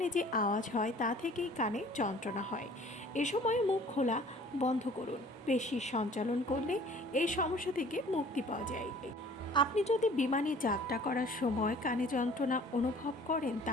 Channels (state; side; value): normal; both; correlation 0.51